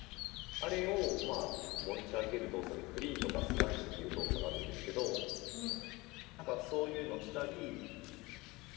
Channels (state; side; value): quieter; right; 22.7 dB